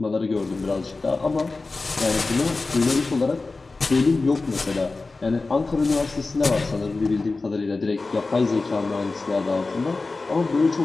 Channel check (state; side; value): quieter; right; 3.6 dB